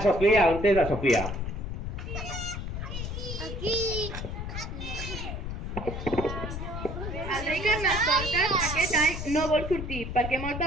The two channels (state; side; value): noise; left; rumble, 6 dB below the sound